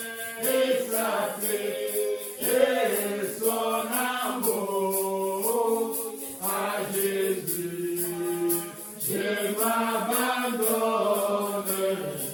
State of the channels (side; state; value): both; identical; correlation 1.00